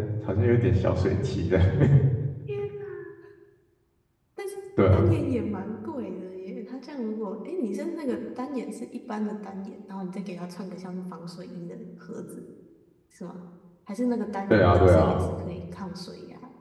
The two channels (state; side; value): identical; both; correlation 1.00